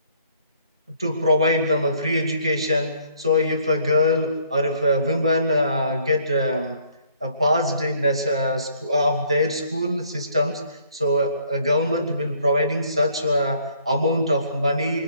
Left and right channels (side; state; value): both; inverted; correlation -0.63